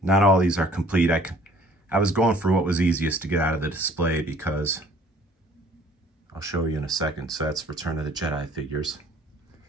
Not all these are complete. I was going for what was easiest to get out of the display because I'll show you in a second. So that's Return of the Jedi figures.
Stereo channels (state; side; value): normal; both; correlation 0.56